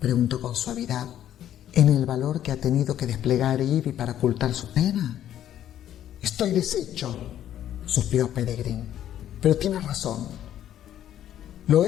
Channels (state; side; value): quieter; right; 11.3 dB